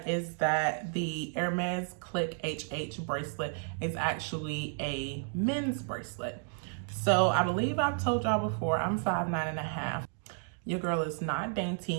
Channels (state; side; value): silent; left; 56 dB below the other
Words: is that the Hermes Click HH bracelet is actually a men's bracelet. So I believe I've told y'all before, I'm 5'9½". Your girl is not